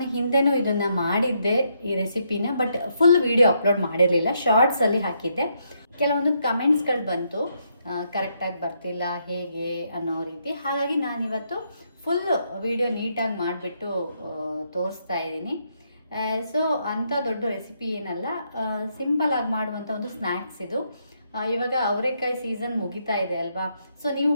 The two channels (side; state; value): both; inverted; correlation -0.76